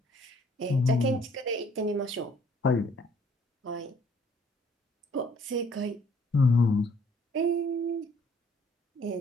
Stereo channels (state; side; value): normal; both; correlation 0.61